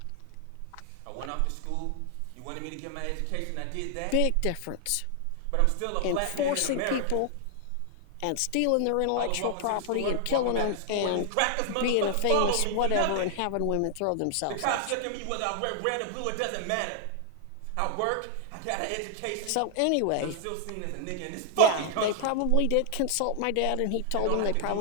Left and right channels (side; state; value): both; different; correlation 0.00